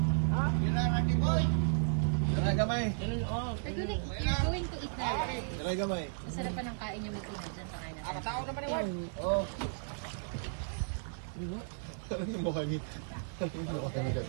Gamay. You're going to eat na. Gamay. Masarap pa ng kain yung ito dyan sa kanya. Tao naman yung Oh. Ano yung mukha niya? Ano yung mukha niya?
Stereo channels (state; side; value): silent; left; 55 dB below the other